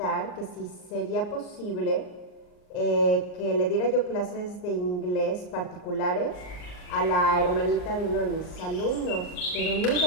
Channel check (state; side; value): late; right; 39 ms